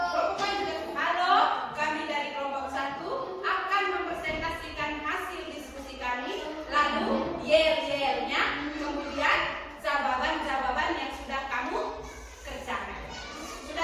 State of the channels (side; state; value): both; identical; correlation 1.00